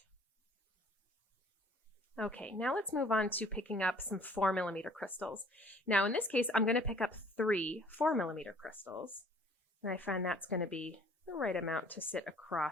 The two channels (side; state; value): both; normal; correlation 0.55